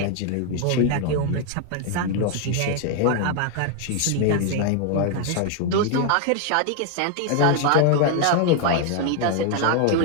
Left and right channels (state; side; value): different; both; correlation 0.00